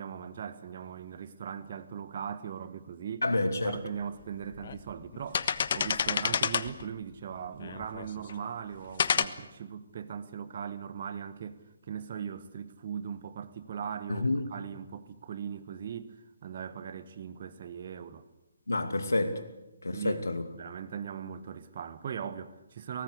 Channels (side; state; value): both; inverted; correlation -0.77